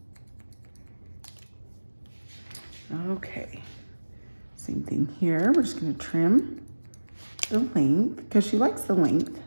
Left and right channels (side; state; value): both; inverted; correlation -1.00